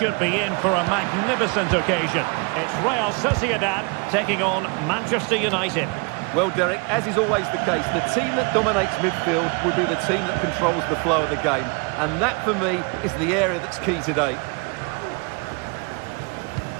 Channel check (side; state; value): left; quieter; 31.9 dB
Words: be in for a magnificent occasion. It's Real Sociedad taking on Manchester United. Well, Derek, as is always the case, the team that dominates midfield will be the team that controls the flow of the game. And that, for me, is the area that's key today.